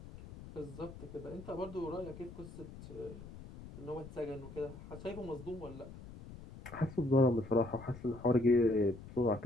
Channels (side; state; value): left; noise; rumble, 15 dB below the sound